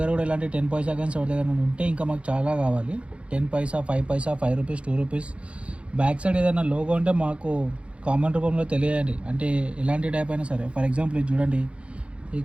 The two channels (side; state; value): left; late; 0.060 ms